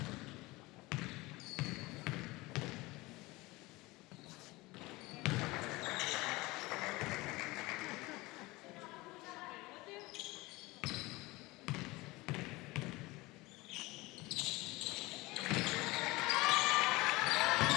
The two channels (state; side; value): quieter; right; 21.7 dB